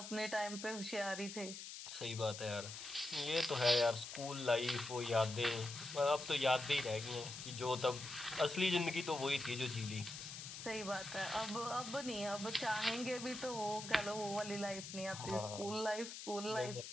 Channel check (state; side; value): noise; left; hiss, 9 dB below the sound